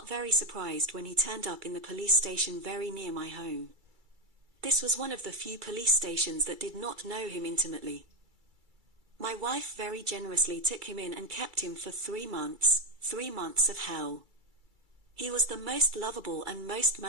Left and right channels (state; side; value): late; left; 2.3 ms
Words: very surprised when he turned up in the police station very near my home. This was one of the few police stations that did not know him intimately. My wife very generously took him in and kept him for 3 months, 3 months of hell. He was the most lovable and most